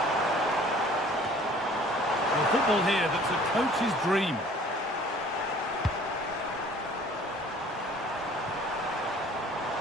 Well, football here that's a coach's dream.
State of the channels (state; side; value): normal; both; correlation 0.52